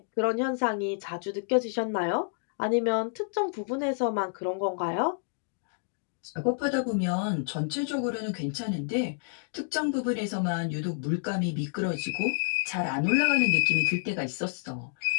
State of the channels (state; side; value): silent; right; digital silence